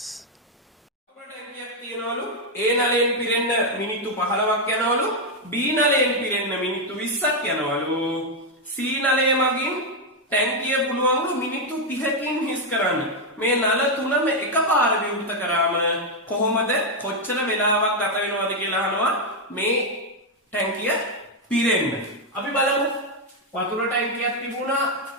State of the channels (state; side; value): normal; both; correlation 0.02